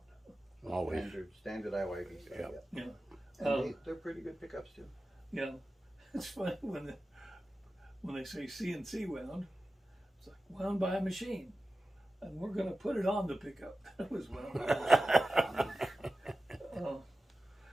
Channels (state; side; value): normal; both; correlation 0.94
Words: Always. Standard IYV. Yeah. Yeah. And they're pretty good pickups too. Yeah. It's funny when they say CNC wound, it's like wound by a machine. And we're going to put it on the pickup. That was wound by a machine.